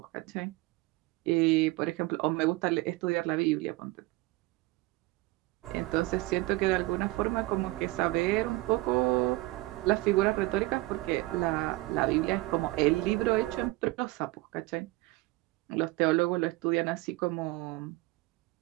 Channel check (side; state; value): left; quieter; 20.7 dB